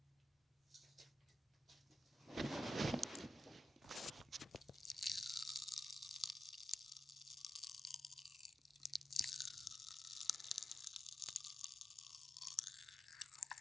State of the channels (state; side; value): normal; both; correlation 0.87